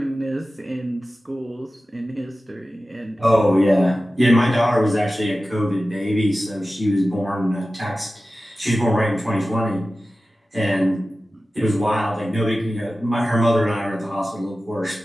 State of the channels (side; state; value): both; normal; correlation 0.95